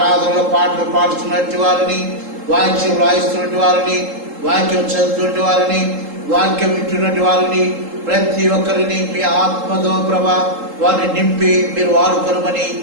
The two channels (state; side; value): late; left; 3.7 ms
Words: పాటలు పాడుతున్నటువంటి వారిని, వాక్యం రాయిస్తున్నటువంటి వారిని, వాక్యం చదువుతున్నటువంటి వారిని, వాక్యం వింటున్నటువంటి వారిని ప్రతి ఒక్కరిని మీ ఆత్మతో ప్రభా వారిని నింపి మీరు వాడుకొనమని